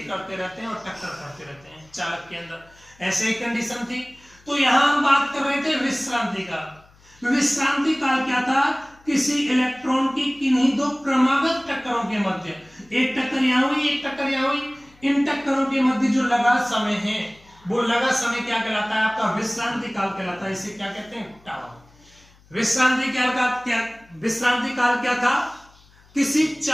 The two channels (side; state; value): left; noise; hum, 28 dB below the sound